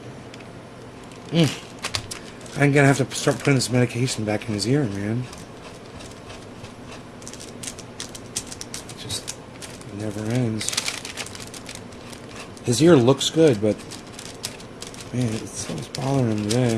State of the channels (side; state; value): both; identical; correlation 1.00